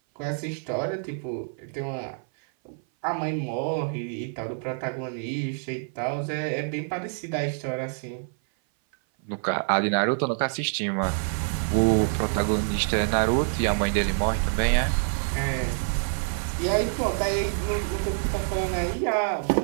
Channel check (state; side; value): silent; left; 57 dB below the other